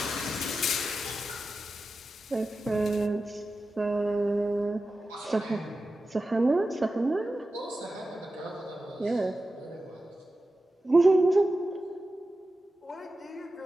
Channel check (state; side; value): normal; both; correlation 0.93